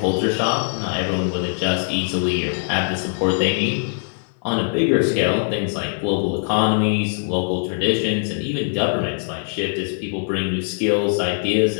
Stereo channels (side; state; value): right; silent; 65 dB below the other